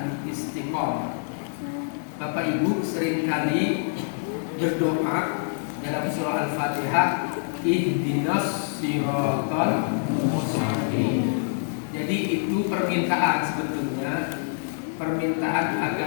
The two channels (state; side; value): silent; right; 61 dB below the other